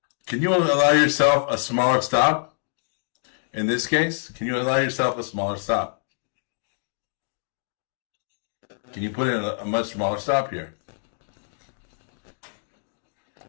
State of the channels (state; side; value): silent; right; digital silence